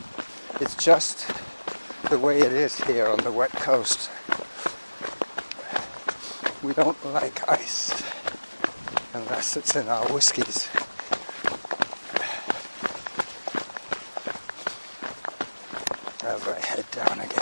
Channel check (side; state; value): both; inverted; correlation -1.00